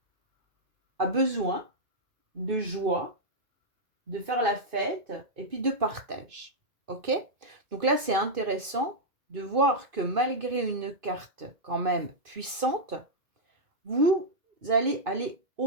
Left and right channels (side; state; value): left; late; 2.5 ms